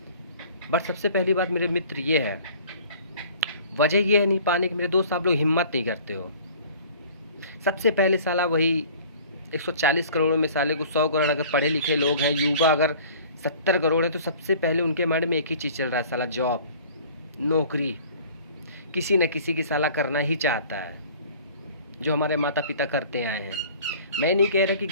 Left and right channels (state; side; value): inverted; both; correlation -0.48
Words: बट सबसे पहली बात मेरे मित्र ये है, वजह ये है नहीं पाने की मेरे दोस्त, आप लोग हिम्मत नहीं करते हो। सबसे पहले साला वही 140 करोड़ में साले को 100 करोड़ अगर पढ़े लिखे लोग हैं, युवा अगर 70 करोड़ है, तो सबसे पहले उनके माइंड में एक ही चीज़ चल रहा है, साला जॉब, नौकरी, किसी न किसी की साला करना ही चाहता है, जो हमारे माता पिता करते आए हैं। मैं नहीं कह रहा कि